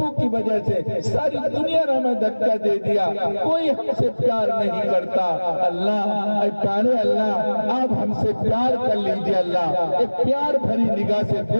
کی وجہ سے ساری دنیا نے ہمیں دھکا دے دیا کوئی ہم سے پیار نہیں کرتا اللہ اے پیارے اللہ آپ ہم سے پیار کر لیجئے اللہ ایک پیار بھری نگاہ سے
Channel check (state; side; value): inverted; both; correlation -1.00